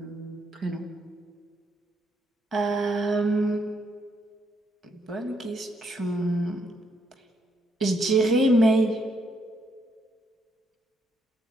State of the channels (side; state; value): both; normal; correlation 0.75